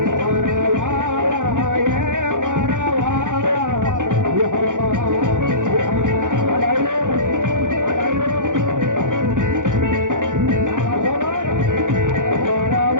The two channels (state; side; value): late; left; 0.87 ms